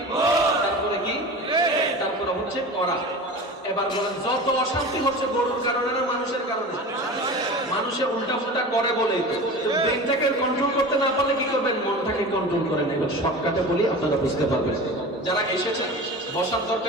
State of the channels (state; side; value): normal; both; correlation 0.33